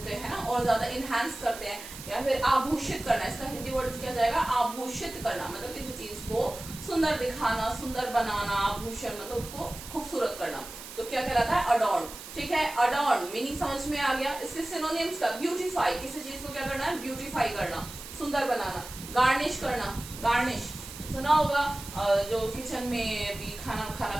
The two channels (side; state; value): right; noise; hiss, 13 dB below the sound